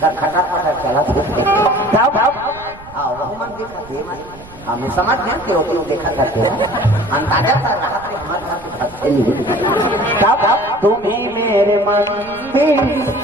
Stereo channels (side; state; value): right; noise; rumble, 20 dB below the sound